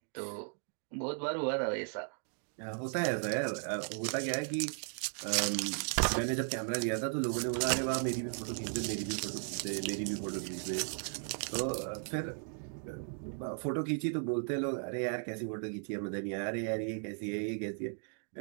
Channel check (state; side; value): silent; left; 54 dB below the other